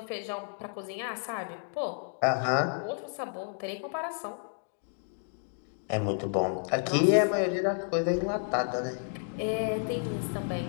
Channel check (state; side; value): silent; right; digital silence